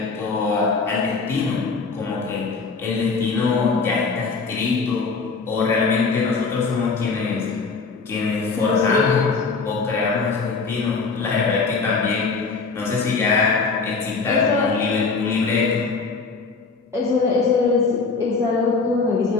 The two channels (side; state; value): right; quieter; 4.5 dB